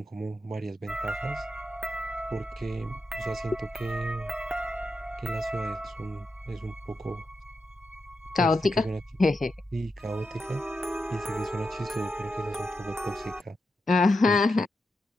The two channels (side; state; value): both; normal; correlation 0.87